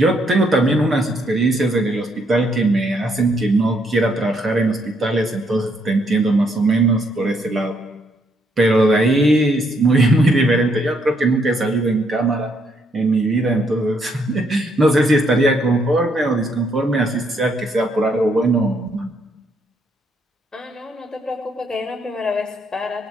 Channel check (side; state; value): both; normal; correlation 0.72